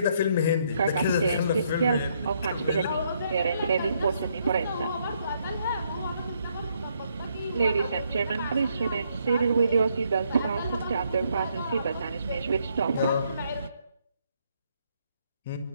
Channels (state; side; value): inverted; both; correlation -0.72